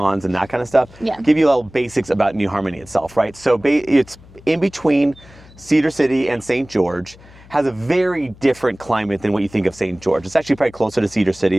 and that kind of stuff, Yeah. give you a little basics about New Harmony itself, right? So it's in between Cedar City and St. George. Has a very different climate than what you think of St. George. It's actually probably closer to Cedar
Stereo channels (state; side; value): noise; left; hum, 23 dB below the sound